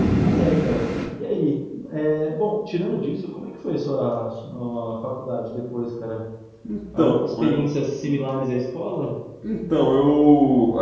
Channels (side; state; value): both; identical; correlation 1.00